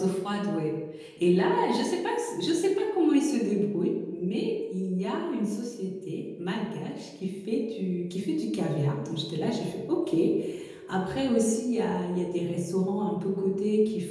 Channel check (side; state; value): both; identical; correlation 1.00